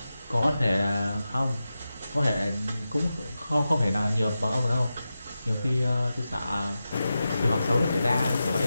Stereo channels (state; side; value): inverted; both; correlation -0.92